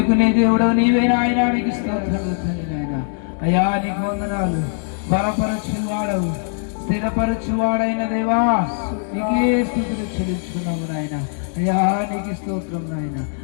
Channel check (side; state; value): right; silent; 64 dB below the other